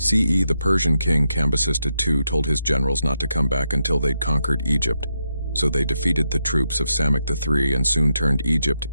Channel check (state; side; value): inverted; both; correlation -0.83